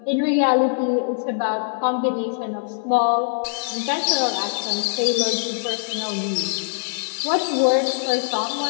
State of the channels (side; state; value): right; silent; 64 dB below the other